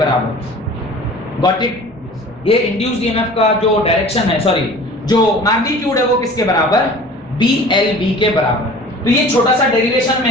Got it? ये इंड्यूस्ड ईएमएफ का जो डायरेक्शन है, सॉरी जो मैग्नीट्यूड है वो किसके बराबर? बी एल बी के बराबर। तो ये छोटा सा डेरिवेशन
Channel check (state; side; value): normal; both; correlation 0.43